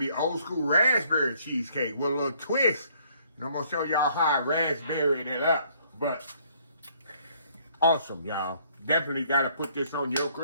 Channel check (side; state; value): both; inverted; correlation -0.64